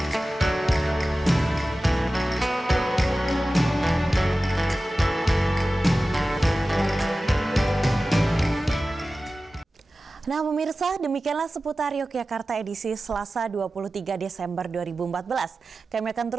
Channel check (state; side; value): normal; both; correlation 0.95